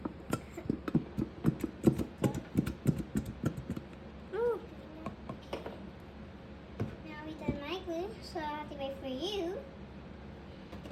Ooh. Now we done my glue, so I have to wait for you.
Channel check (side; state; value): both; identical; correlation 1.00